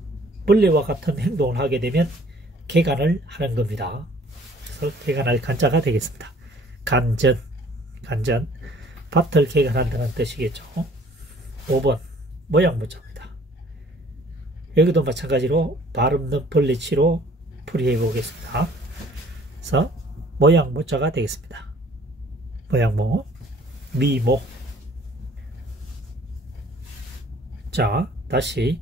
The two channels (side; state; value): both; normal; correlation 0.55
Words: 벌레와 같은 행동을 하게 되면 개간을 하는 겁니다. 그래서 개간할 간자가 되겠습니다. 간전, 간전, 밭을 개간한다는 뜻이겠죠. 5번 모양문자입니다. 여기도 마찬가지로 발음 없는 벌레치로 풀이해 보겠습니다. 그래서 모양문자가 되겠습니다. 모양모, 미모. 자, 다시